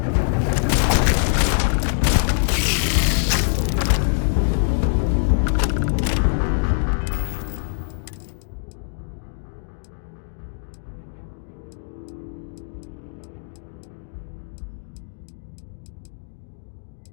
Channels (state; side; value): silent; right; digital silence